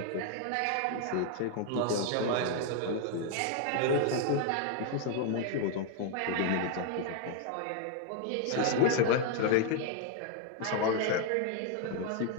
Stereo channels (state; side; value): different; both; correlation 0.00